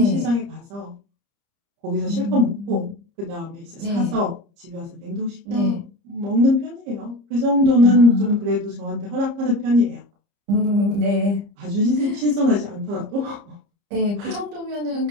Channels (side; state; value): left; late; 30 ms